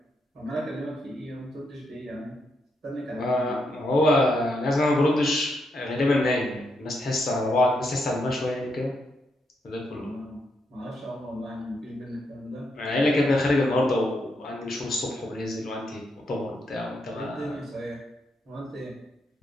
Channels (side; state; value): both; normal; correlation 0.80